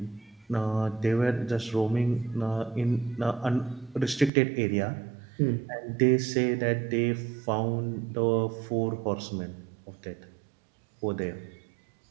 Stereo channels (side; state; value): left; drops out; at 4.3 s